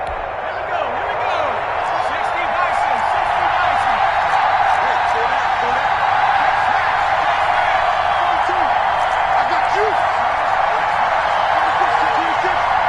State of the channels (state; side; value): identical; both; correlation 1.00